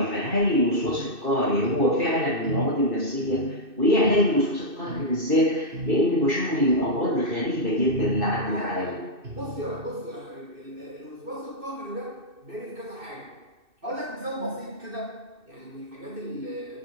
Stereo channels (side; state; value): left; late; 2.6 ms